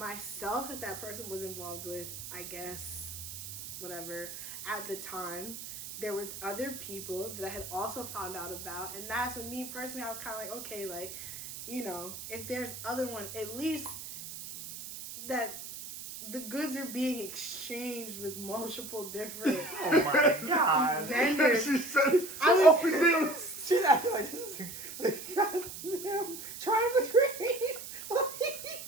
that person was involved with, I guess, whatever, at the time. There was other people that I had also found out about, and that's when me personally, I was kind of like, okay, like, if there's other one, at least that the goods are being exchanged with multiple different Oh my god. vendors. She's acting like this is the goddamn triangle tree. What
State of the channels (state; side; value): noise; right; hiss, 10 dB below the sound